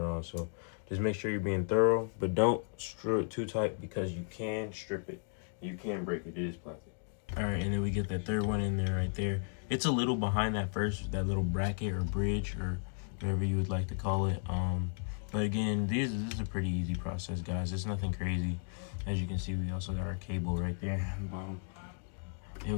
on. So just make sure you're being thorough, but don't screw it too tight, because you can strip it. You can break it. It is plastic. All right, and then we get that third one in there right there. It's a little behind that little bracket or bridge or whatever you would like to call it. But again, this is a pretty easy process, guys. It's nothing crazy. As you can see, we also got our cable right there. And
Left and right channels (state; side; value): silent; right; 55 dB below the other